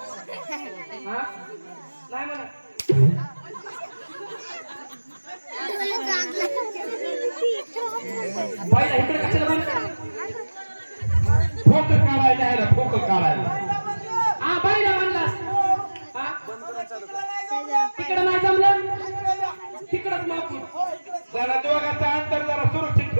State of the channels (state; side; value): inverted; both; correlation -1.00